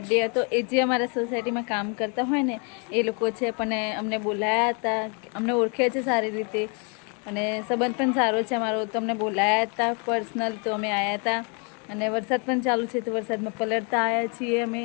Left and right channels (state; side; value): quieter; right; 36.0 dB